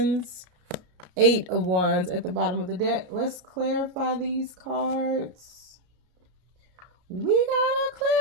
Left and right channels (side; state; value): left; late; 33 ms